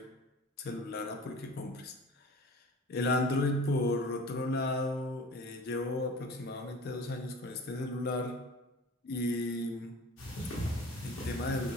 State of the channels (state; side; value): normal; both; correlation 0.41